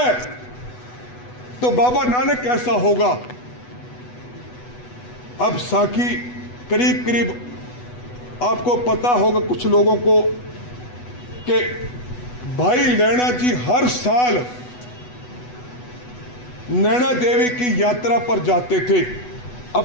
तो बाबा नानक कैसा होगा। अब साखी करीब करीब आपको पता होगा कुछ लोगों को कि भाई लैला जी हर साल नैना देवी की यात्रा पर जाते थे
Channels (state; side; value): late; right; 8.1 ms